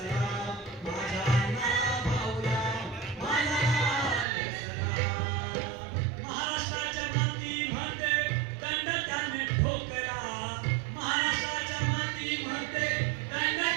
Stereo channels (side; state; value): left; drops out; at 4.2 s